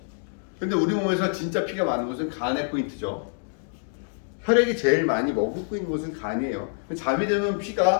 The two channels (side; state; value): right; silent; digital silence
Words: 근데 우리 몸에서 진짜 피가 많은 곳은 간의 포인트죠. 혈액이 제일 많이 머금고 있는 곳은 간이에요. 잠이 들면